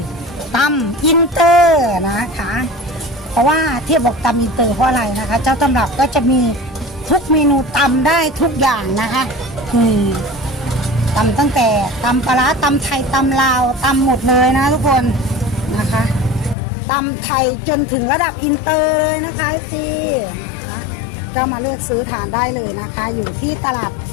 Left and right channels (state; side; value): drops out; right; at 16.6 s